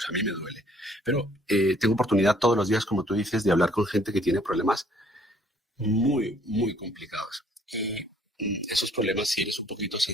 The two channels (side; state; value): both; normal; correlation 0.61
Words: a mí me duele. Pero tengo oportunidad todos los días, como tú dices, de hablar con gente que tiene problemas muy, muy complicados. Y esos problemas, si eres un poquito